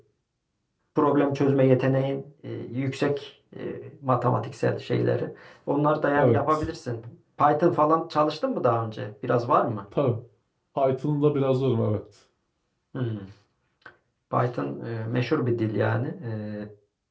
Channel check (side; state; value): both; identical; correlation 1.00